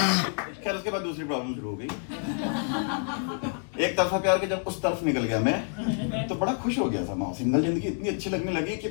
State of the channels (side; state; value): right; silent; 57 dB below the other